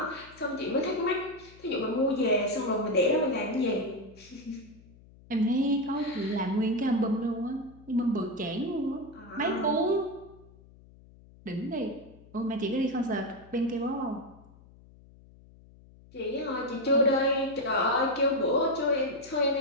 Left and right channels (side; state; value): left; noise; hum, 24 dB below the sound